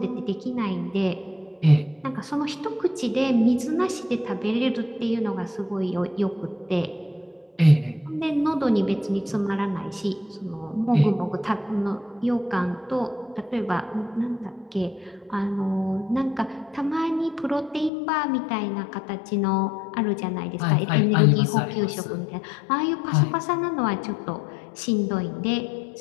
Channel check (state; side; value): drops out; right; at 17.9 s